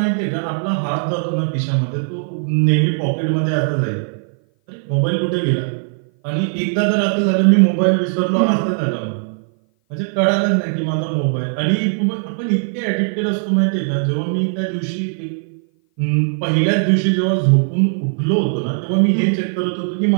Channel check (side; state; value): left; silent; 57 dB below the other